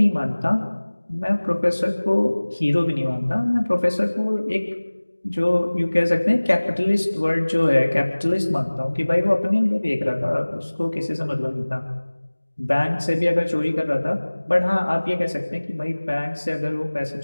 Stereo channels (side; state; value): both; inverted; correlation -1.00